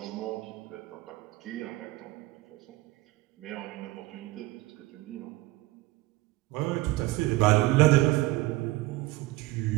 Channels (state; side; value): quieter; left; 19.4 dB